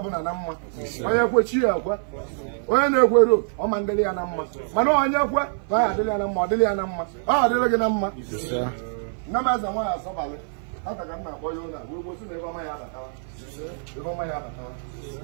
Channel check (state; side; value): silent; left; 56 dB below the other